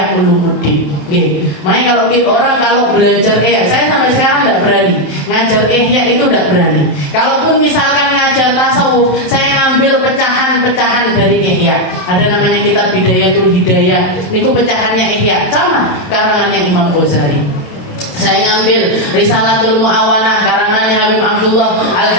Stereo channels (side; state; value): right; late; 27 ms